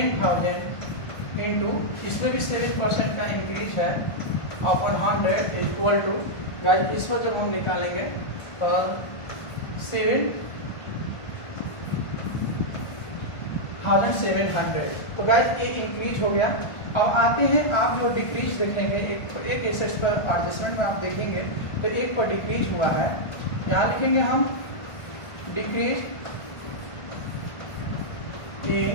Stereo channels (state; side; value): late; right; 1.5 ms